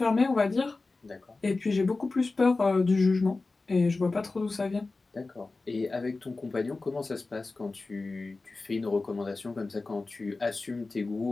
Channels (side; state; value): right; quieter; 3.6 dB